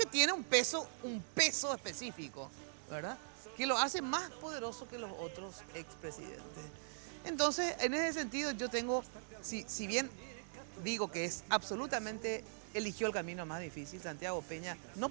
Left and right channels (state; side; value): silent; left; digital silence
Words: tiene un peso específico, ¿verdad?, que lo hace más poderoso que los otros expresidentes. Entonces, en ese sentido, yo tengo, si bien digo que es absolutamente, eligió el camino más difícil, Santiago Peña, no